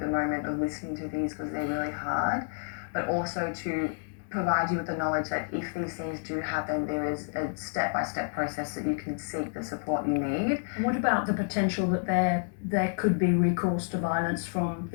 the moment of listening to these because they're really hard, but also to provide you with the knowledge that if these things do happen, there is a step-by-step process that you can seek the support you need. What about the potential that there could be recourse to violence from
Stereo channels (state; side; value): silent; right; digital silence